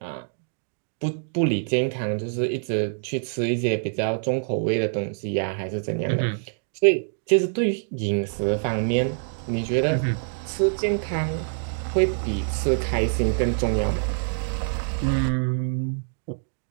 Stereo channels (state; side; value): silent; left; digital silence